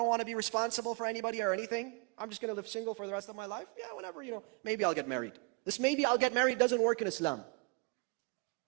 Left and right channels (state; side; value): quieter; left; 31.7 dB